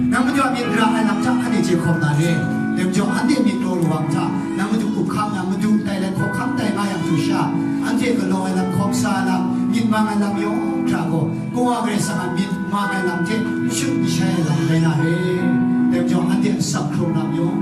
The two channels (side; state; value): both; identical; correlation 1.00